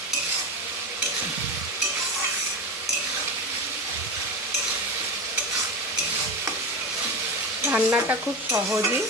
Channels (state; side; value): normal; both; correlation 0.22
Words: রান্নাটা খুব সহজই,